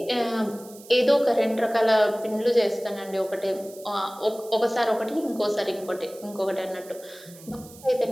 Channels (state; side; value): noise; right; hiss, 20 dB below the sound